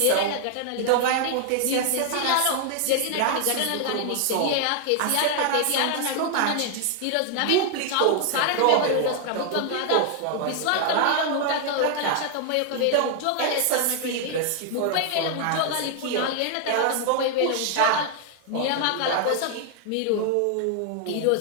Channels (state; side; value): different; both; correlation 0.00